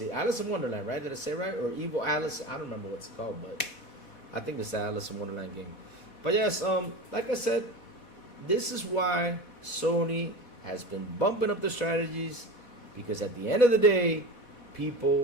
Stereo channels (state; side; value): late; right; 4.1 ms